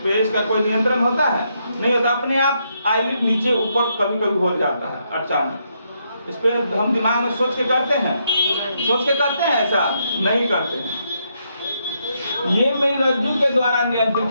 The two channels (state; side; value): inverted; both; correlation -0.78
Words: पे इसका कोई नियंत्रण होता है? नहीं होता। अपने आप आईलिड नीचे ऊपर कभी कभी हो जाता है अचानक। इस पे हम दिमाग में सोच के करते हैं? सोच के करते हैं? ऐसा नहीं करते हैं। ये मेरुरज्जु के द्वारा